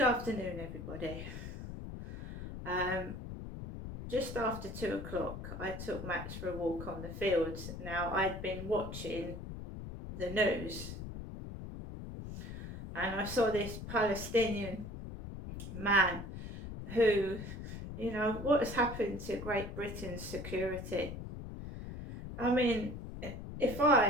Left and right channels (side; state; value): left; noise; rumble, 9 dB below the sound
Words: everybody. Just after 2 o'clock, I took Max for a walk on the fields. Now, I'd been watching the news and I saw this Palestinian man who, what has happened to Great Britain's security? I mean, if